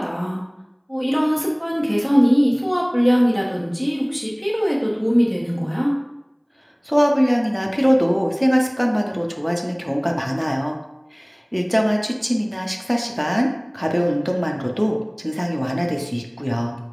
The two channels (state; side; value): identical; both; correlation 1.00